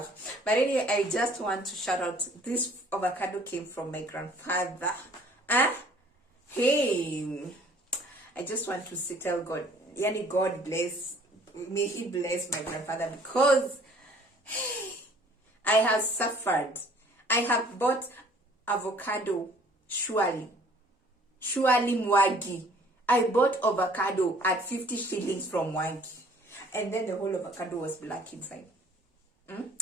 But anyway, I just want to shout out, this avocado came from my grandfather. Hey, I just want to tell God, yani God bless, may he bless my grandfather, because I have suffered. I have bought avocado, surely Mwagi. I bought avocado at 50 shillings from Mwagi, and then the whole avocado was black inside.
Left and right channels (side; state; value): both; normal; correlation 0.55